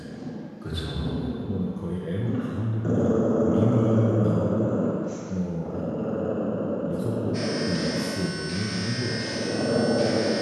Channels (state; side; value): identical; both; correlation 1.00